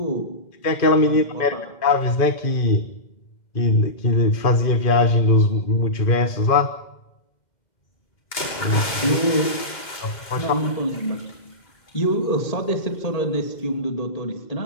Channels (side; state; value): right; late; 2.1 ms